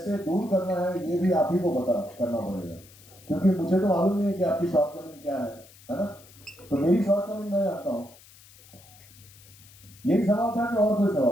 दूर करना है ये भी आप ही को पता करना पड़ेगा, क्योंकि मुझे तो मालूम नहीं है कि आपकी शॉर्ट कमिंग क्या है ना। तो मेरी शॉर्ट कमिंग मैं जानता हूँ। यही सवाल था कि और कोई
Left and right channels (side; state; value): left; noise; hiss, 24 dB below the sound